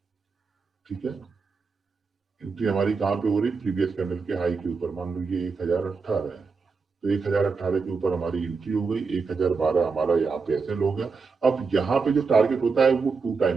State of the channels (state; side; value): quieter; left; 4.8 dB